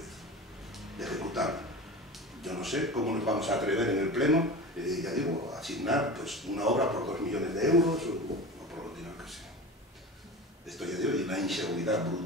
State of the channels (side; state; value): both; normal; correlation 0.32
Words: de ejecutarlo. Yo no sé cómo nos vamos a atrever en el Pleno, ya digo, a asignar pues, una obra por 2 millones de euros o por lo dinero que sea. Esto ya digo, hay una inseguridad